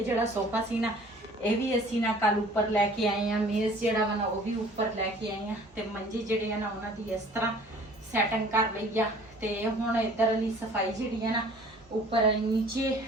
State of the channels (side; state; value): both; normal; correlation 0.50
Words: ਜਿਹੜਾ ਸੋਫਾ ਸੀ ਨਾ ਇਹ ਵੀ ਅਸੀਂ ਨਾ ਕੱਲ ਉੱਪਰ ਲੈ ਕੇ ਆਏ ਆ, ਮੇਜ਼ ਜਿਹੜਾ ਵਾ ਨਾ ਉਹ ਵੀ ਉੱਪਰ ਲੈ ਕੇ ਆਏ ਆ ਤੇ ਮੰਜੇ ਜਿਹੜੇ ਆ ਨਾ ਉਹਨਾਂ ਦੀ ਇਸ ਤਰ੍ਹਾਂ ਸੈਟਿੰਗ ਕਰ ਲਈ ਆ। ਤੇ ਹੁਣ ਇਧਰ ਲਈ ਸਫਾਈ ਜਿਹੜੀ ਆ ਨਾ ਉੱਪਰ ਨੀਚੇ